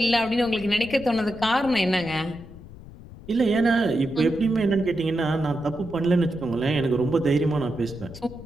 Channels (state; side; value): noise; left; rumble, 17 dB below the sound